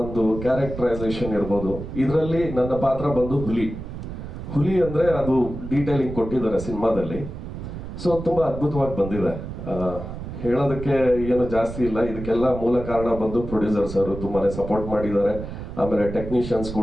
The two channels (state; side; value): noise; right; rumble, 9 dB below the sound